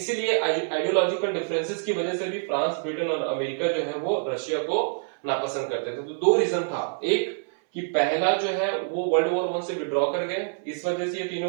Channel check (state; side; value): silent; left; 60 dB below the other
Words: आइडियोलॉजिकल डिफरेंसेस की वजह से भी फ्रांस, ब्रिटेन और अमेरिका जो है वो रशिया को नापसंद करते थे। तो दो रीजन था, एक कि पहला जो है वो वर्ल्ड वॉर 1 से विड्रॉ कर गए, इस वजह से ये